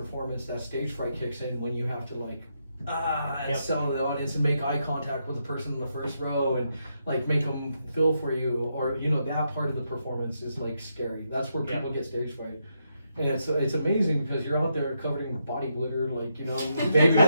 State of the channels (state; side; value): inverted; both; correlation -0.80